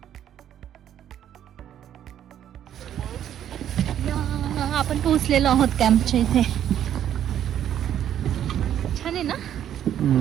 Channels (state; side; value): quieter; left; 10.5 dB